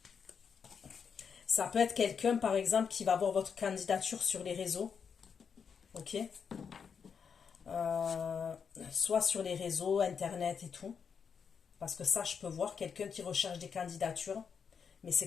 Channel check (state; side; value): quieter; right; 6.5 dB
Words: peut être quelqu'un, par exemple, qui va voir votre candidature sur les réseaux. Ok? Soit sur les réseaux, Internet et tout. Parce que ça, je peux voir quelqu'un qui recherche des candidatures, mais c'est